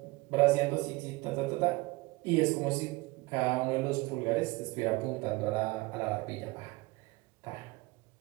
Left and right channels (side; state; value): left; quieter; 22.9 dB